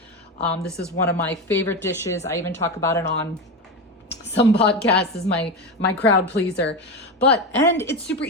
This is one of my favorite dishes. I even talk about it on some podcasts as my crowd pleaser. And it's super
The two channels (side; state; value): both; normal; correlation 0.18